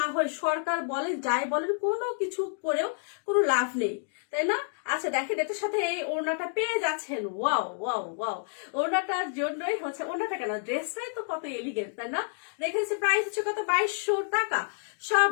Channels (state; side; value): silent; right; digital silence